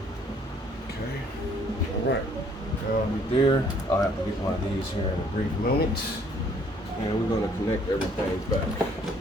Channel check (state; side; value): normal; both; correlation 0.62